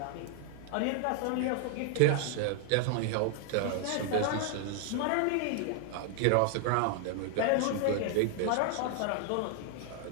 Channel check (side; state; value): both; different; correlation 0.00